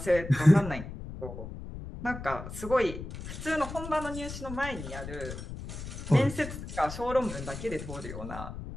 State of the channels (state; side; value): noise; left; rumble, 9 dB below the sound